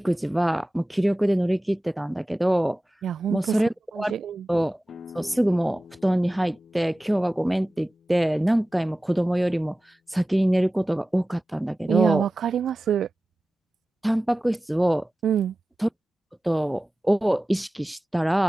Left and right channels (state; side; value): normal; both; correlation 0.96